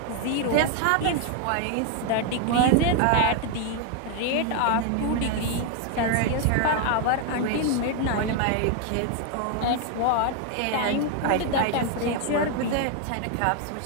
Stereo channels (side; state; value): both; different; correlation 0.00